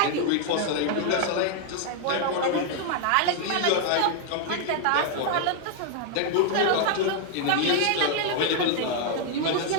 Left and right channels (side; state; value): both; different; correlation 0.00